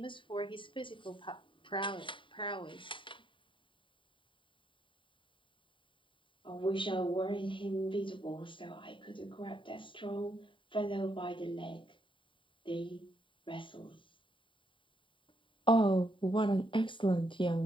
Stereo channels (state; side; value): late; right; 0.25 ms